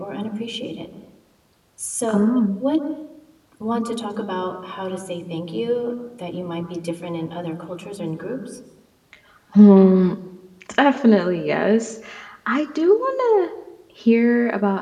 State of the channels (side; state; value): both; identical; correlation 1.00